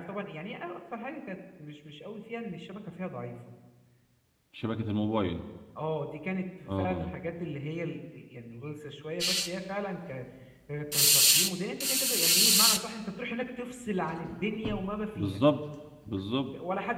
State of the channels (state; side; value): identical; both; correlation 1.00